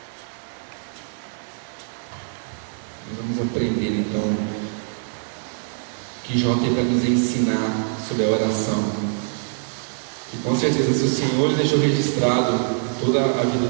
Nós vamos aprender então que Jó tem para nos ensinar sobre a oração. E com certeza, se o Senhor deixou registrado toda a vida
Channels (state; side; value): silent; left; 63 dB below the other